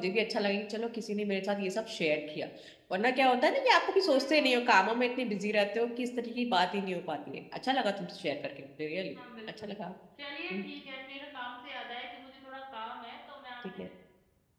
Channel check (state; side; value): identical; both; correlation 1.00